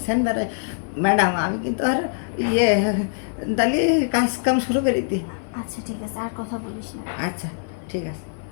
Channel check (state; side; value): silent; right; 56 dB below the other